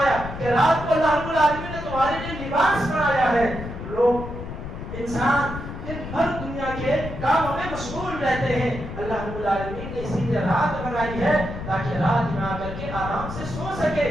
کہ رات کو اللہ رب العالمین نے تمہارے لیے لباس بنایا ہے. لوگ انسان دن بھر دنیا کے کاموں میں مشغول رہتے ہیں. اللہ رب العالمین نے اسی لیے رات بنائی ہے تاکہ رات میں آ کر کے آرام سے سو سکے,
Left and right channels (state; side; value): noise; left; rumble, 9 dB below the sound